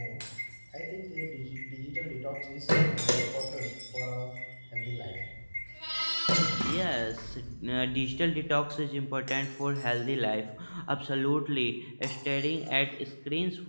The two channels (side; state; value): both; inverted; correlation -1.00